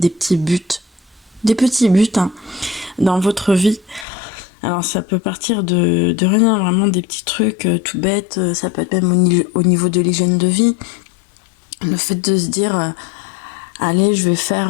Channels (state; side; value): drops out; right; at 4.0 s